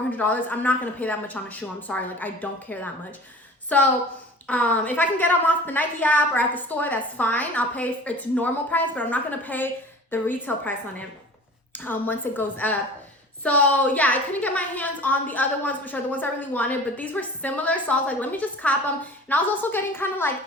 I'm not going to pay that much on a shoe. I'm sorry. Like, I don't care that much. So if I can get them off the Nike app or at the store, that's fine. I'll pay its normal price, but I'm not going to pay the retail price on it once it goes up. So yeah, I couldn't get my hands on the other ones, which are the ones I really wanted, but these were similar. So I was like, let me just cop them. And I was also getting kind of like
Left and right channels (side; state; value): both; normal; correlation 0.41